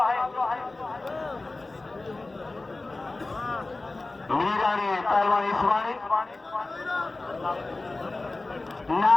मीरानी पहलवान हिसबानी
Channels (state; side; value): quieter; right; 3.2 dB